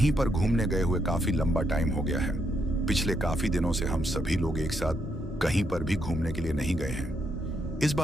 पर घूमने गए हुए काफी लंबा टाइम हो गया है। पिछले काफी दिनों से हम सभी लोग एक साथ कहीं पर भी घूमने के लिए नहीं गए हैं। इस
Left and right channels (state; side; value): normal; both; correlation 0.77